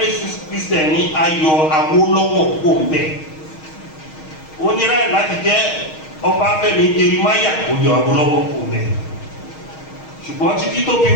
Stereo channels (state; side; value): late; right; 6.4 ms